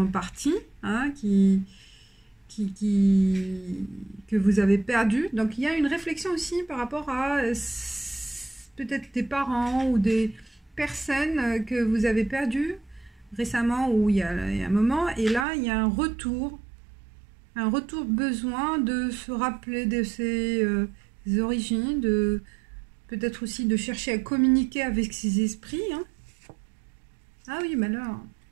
partis, hein, que vous avez perdus. Donc il y a une réflexion aussi par rapport à peut-être des parents ou des personnes que vous avez perdues récemment, ou il y a un moment, et là il y a un retour besoin de se rappeler de ses origines, peut-être aussi de chercher à communiquer avec ses esprits, hein. Ah oui, malheur.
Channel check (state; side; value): drops out; left; at 15.5 s